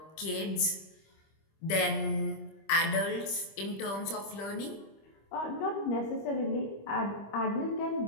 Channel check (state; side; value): late; right; 25 ms